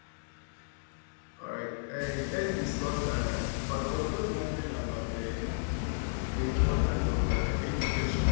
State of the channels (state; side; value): silent; right; digital silence